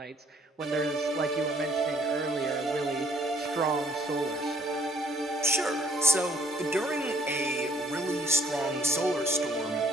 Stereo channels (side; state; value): both; normal; correlation 0.62